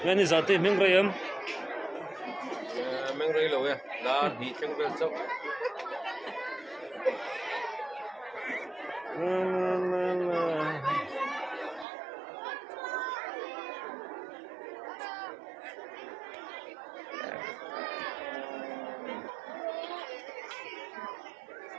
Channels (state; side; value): drops out; left; at 11.9 s